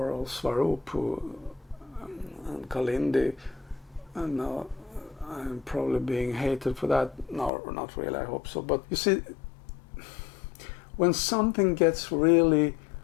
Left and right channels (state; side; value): drops out; right; at 7.5 s